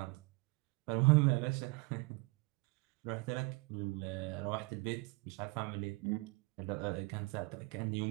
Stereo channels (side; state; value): left; quieter; 26.9 dB